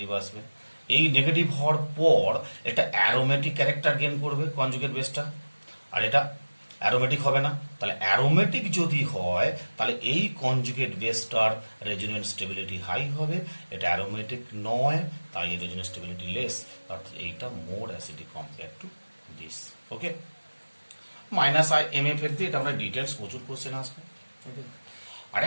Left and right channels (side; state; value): both; inverted; correlation -1.00